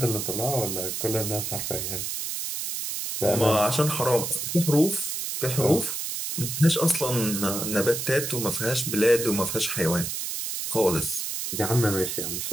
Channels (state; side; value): noise; right; hiss, 4 dB below the sound